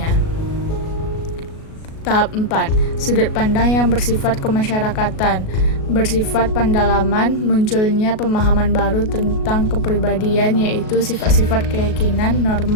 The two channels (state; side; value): late; right; 37 ms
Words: Tahap 4, sudut pandang yang bersifat kemasyarakatan. Bersifat pendalaman, munculnya pemahaman baru tentang kepribadian, yaitu sifat-sifat keyakinan,